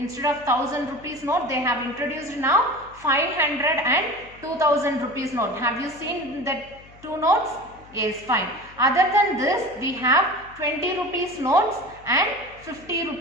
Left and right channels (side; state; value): left; noise; hum, 23 dB below the sound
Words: of 1000 rupees note they have introduced now 500 and 2000 rupees note. Have you seen that 2 notes? Yes, fine. Other than this we have 20 rupees notes and 50